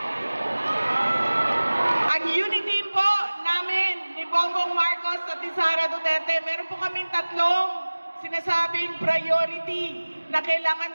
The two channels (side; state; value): both; inverted; correlation -1.00